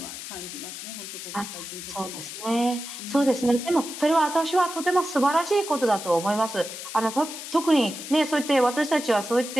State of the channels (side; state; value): left; noise; hiss, 10 dB below the sound